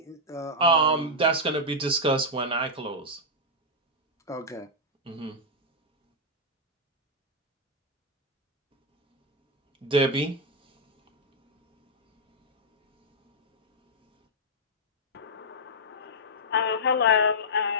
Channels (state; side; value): normal; both; correlation -0.06